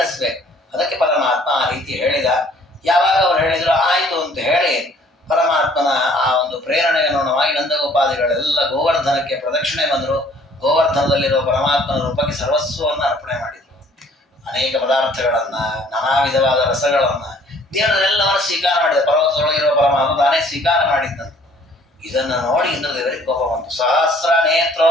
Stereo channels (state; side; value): normal; both; correlation 0.57